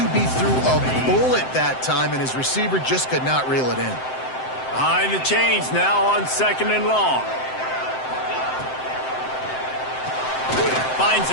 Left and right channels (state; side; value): late; right; 7.7 ms